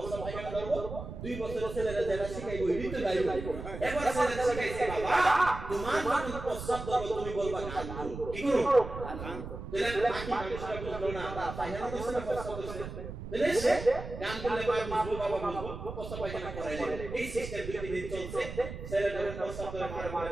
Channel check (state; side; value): noise; right; rumble, 9 dB below the sound